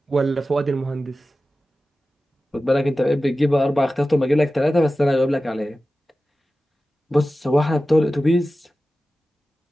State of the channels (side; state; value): both; normal; correlation 0.95